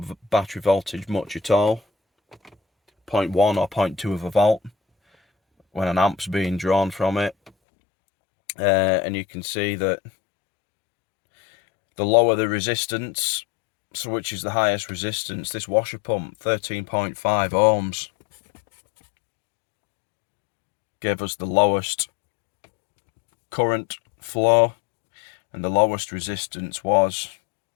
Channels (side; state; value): right; drops out; at 7.5 s